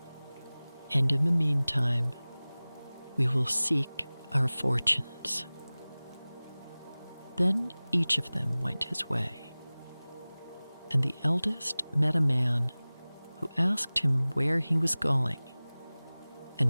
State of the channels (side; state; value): both; inverted; correlation -0.99